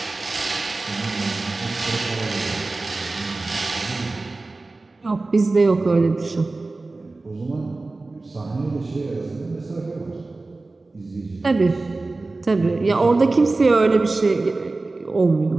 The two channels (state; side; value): quieter; left; 3.3 dB